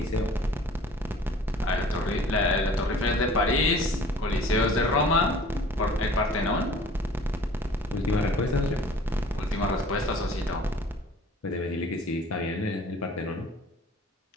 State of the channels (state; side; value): normal; both; correlation 0.49